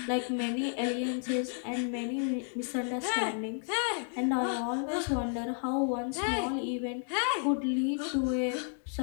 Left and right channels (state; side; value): silent; right; 57 dB below the other